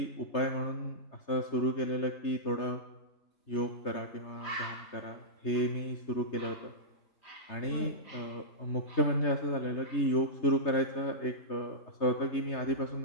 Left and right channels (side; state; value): right; late; 3.3 ms